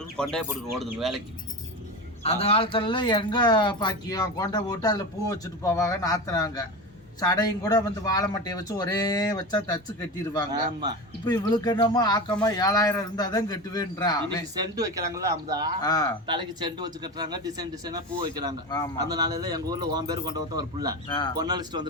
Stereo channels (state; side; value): normal; both; correlation 0.24